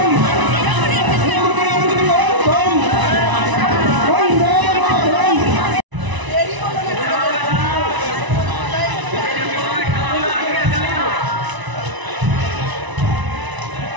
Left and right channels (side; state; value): left; late; 1.0 ms